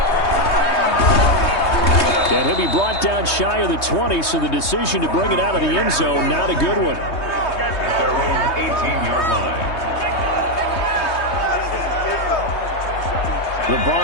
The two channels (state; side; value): late; right; 3.2 ms